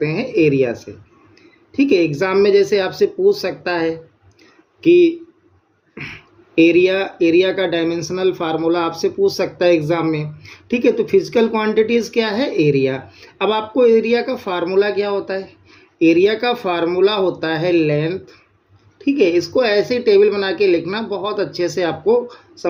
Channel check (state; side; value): identical; both; correlation 1.00